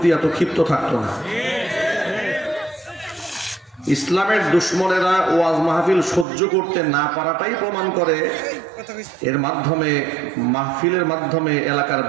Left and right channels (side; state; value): left; drops out; at 6.2 s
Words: এত ক্ষিপ্ত থাকতো না। ইসলামের দুশ্মনেরা ওয়াজ মাহফিল সহ্য করতে না পারাটাই প্রমাণ করে এর মাধ্যমে মাহফিলের মাধ্যমে এলাকার